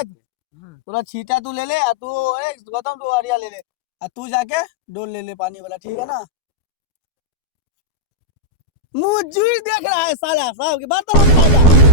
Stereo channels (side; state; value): right; late; 12 ms